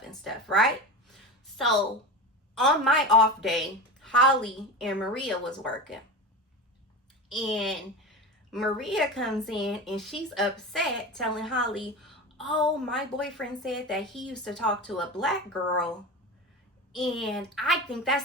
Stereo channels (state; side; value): normal; both; correlation 0.27